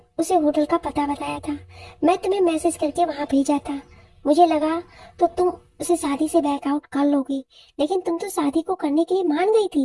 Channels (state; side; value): identical; both; correlation 1.00